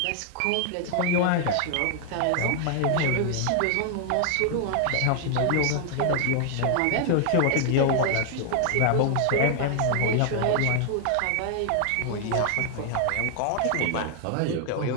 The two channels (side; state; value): both; different; correlation 0.00